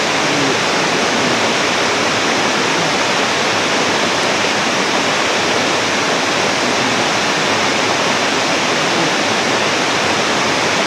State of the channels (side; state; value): both; identical; correlation 1.00